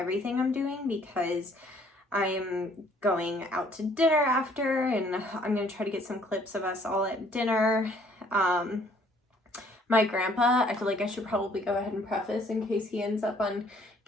I'm doing because I am going out to dinner after, and I'm going to try to get some clips of us all at dinner. My grandpa, I feel like I should probably go ahead and preface in case he ends up on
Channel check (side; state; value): both; normal; correlation 0.61